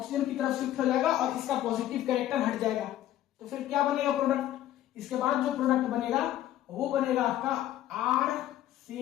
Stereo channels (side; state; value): right; quieter; 13.0 dB